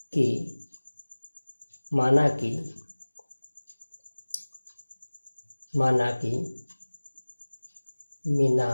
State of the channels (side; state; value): both; inverted; correlation -1.00